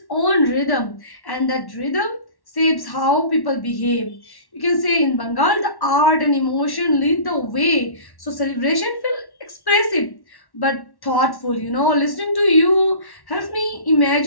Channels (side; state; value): right; late; 1.1 ms